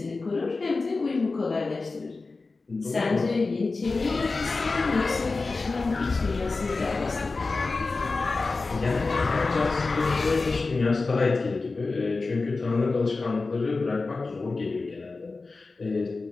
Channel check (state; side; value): quieter; right; 3.8 dB